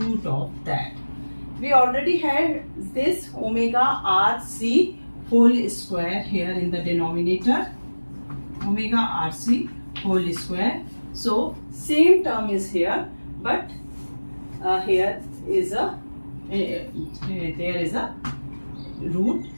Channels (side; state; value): both; inverted; correlation -1.00